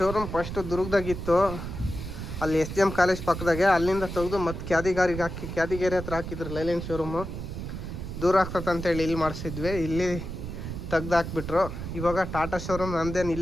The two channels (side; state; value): right; noise; rumble, 7 dB below the sound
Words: ಫಸ್ಟು ದುರ್ಗದಾಗಿತ್ತು, ಅಲ್ಲಿ SGM ಕಾಲೇಜ್ ಪಕ್ಕದಾಗೆ. ಅಲ್ಲಿಂದ ತೆಗೆದು ಮತ್ತೆ ಕ್ಯಾದಿಗೇರಿ ಹತ್ರ ಹಾಕಿದ್ರು ಲೈಲ್ಯಾಂಡ್ ಶೋರೂಮು. ದೂರ ಆಗ್ತದಂತೇಳಿ ಇಲ್ಲಿ ಮಾಡಿಸಿದ್ವಿ. ಇಲ್ಲಿ ತೆಗ್ದು ಹಾಕ್ಬಿಟ್ರು. ಇವಾಗ ಟಾಟಾ ಶೋರೂಮ್ ನಮ್ಮದೇನು